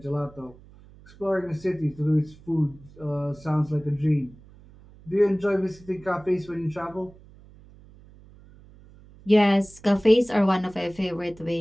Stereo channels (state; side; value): noise; right; hum, 23 dB below the sound